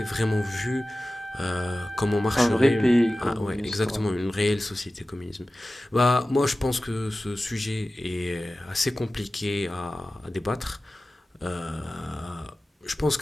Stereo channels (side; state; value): both; normal; correlation 0.96